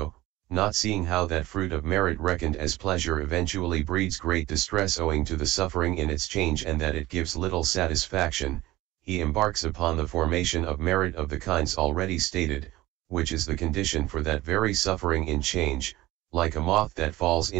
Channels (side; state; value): left; quieter; 17.9 dB